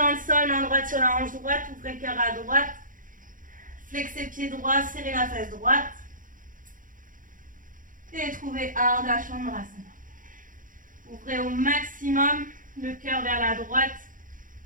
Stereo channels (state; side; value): late; left; 0.39 ms